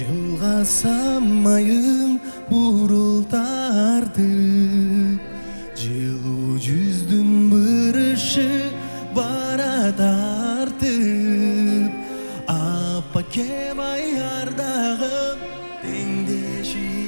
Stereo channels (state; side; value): inverted; both; correlation -1.00